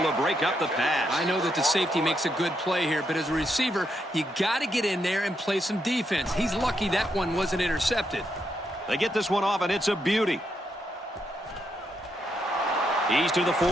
to break up the pass. I know that the safety makes a good play here, but as a receiver, you got to get in there and play some defense. He's lucky that one wasn't intercepted. They get this one off, and it's a beauty. He's to the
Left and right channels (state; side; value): normal; both; correlation 0.80